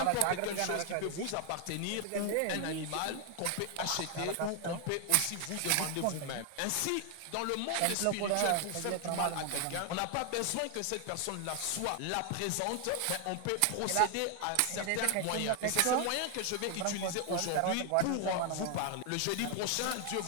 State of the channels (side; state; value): both; different; correlation 0.00